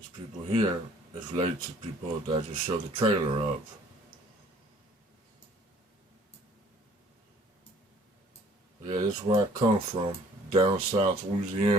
people here is related to people that I just showed the trailer of. Yeah, this is where I come from, down south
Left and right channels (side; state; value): both; normal; correlation 0.56